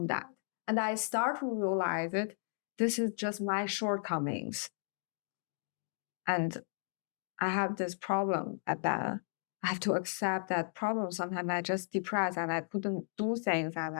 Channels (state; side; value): silent; right; digital silence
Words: that. And I start to realize that this is just my shortcomings. And I have this problem at that. I have to accept that problem. Sometimes I just depressed and I couldn't do things, and